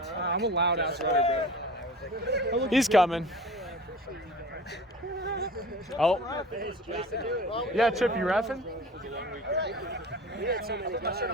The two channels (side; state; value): both; normal; correlation 0.40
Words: I'm a loud ass runner, bro. He's coming. Oh. Yeah, Chip, you reffing?